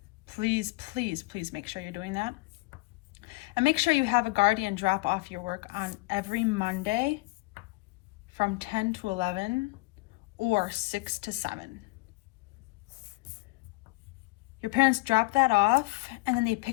Please, please, please make sure you're doing that. And make sure you have a guardian drop off your work on every Monday from 10 to 11 or 6 to 7. Your parents drop that off and then they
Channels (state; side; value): quieter; right; 24.4 dB